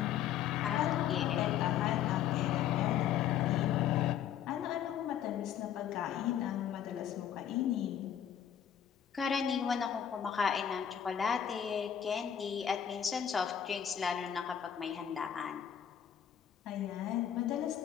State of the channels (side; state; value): right; quieter; 9.4 dB